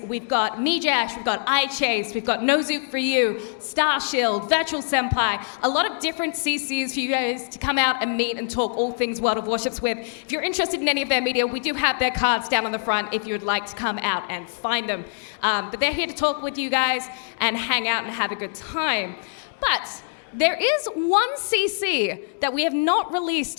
We've got Mijash, we've got iChase, we've got Nozook for You, Starshield, Virtual Senpai, a lot of different CCs for you guys to come out and meet and talk all things World of Warships with. If you're interested in any of their media, we do have their cards down on the front if you would like to come out and find them. But they're here to talk with you guys and hang out and have a good time. But there is one CC that we have not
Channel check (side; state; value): right; silent; digital silence